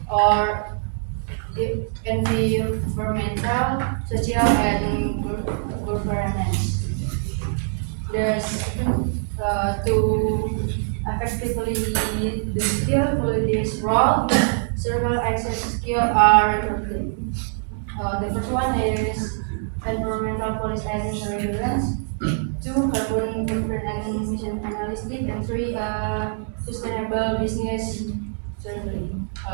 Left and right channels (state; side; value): silent; left; digital silence